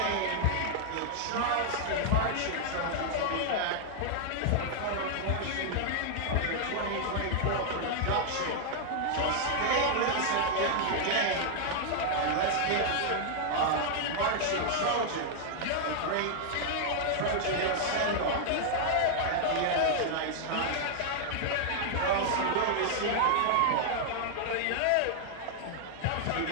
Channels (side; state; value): both; different; correlation 0.00